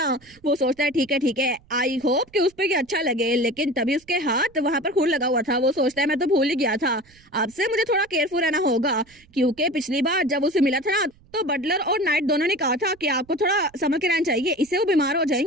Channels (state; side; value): noise; right; rumble, 29 dB below the sound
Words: वो सोचता है ठीक है आई होप कि उस पर अच्छा लगे। लेकिन तभी उसके हाथ वहाँ पर खून लगा हुआ था। वो सोचता है मैं तो भूल ही गया था, अब से मुझे थोड़ा केयरफुल रहना होगा क्योंकि पिछली बार जब उसे मिला था ना तो बटलर और नाइट दोनों ने कहा था कि आपको थोड़ा संभल के रहना चाहिए, इससे वो बीमार हो